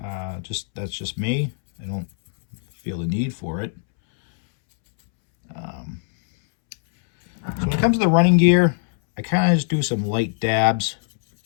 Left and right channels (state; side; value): silent; right; 65 dB below the other